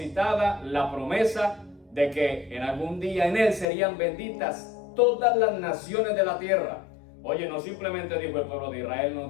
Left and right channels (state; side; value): drops out; right; at 3.7 s